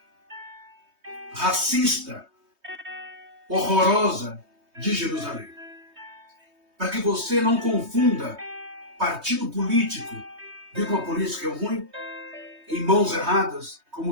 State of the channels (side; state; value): left; late; 3.2 ms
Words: racista, horrorosa de Jerusalém. Para que você não confunda partido político, viu como a política é ruim? Em mãos erradas,